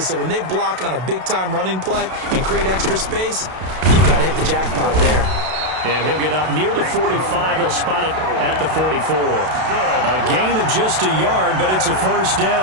So when they block on a big-time running play and create extra space, you've got to hit the jackpot there. And he'll get up near the 45. They'll spot it at the 44. A gain of just a yard, but it's a first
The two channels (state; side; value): late; left; 32 ms